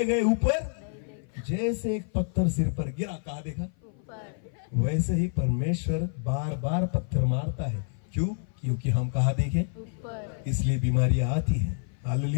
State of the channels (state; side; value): silent; right; 56 dB below the other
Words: गए ऊपर। जैसे एक पत्थर सिर पर गिरा, कहा देखा, वैसे ही परमेश्वर बार बार पत्थर मारता है। क्यों, क्योंकि हम कहा देखें, इसलिए बीमारियां आती हैं।